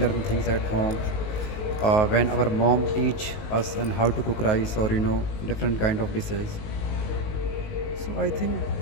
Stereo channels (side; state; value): right; late; 19 ms